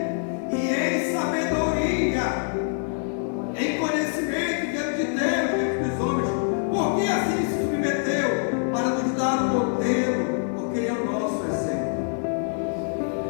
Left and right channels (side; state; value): right; silent; 56 dB below the other